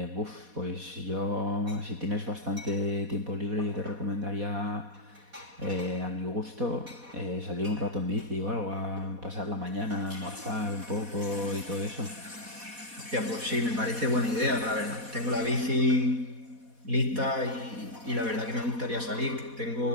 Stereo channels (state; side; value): late; left; 4.1 ms